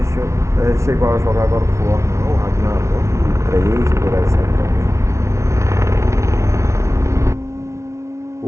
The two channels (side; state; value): left; late; 0.14 ms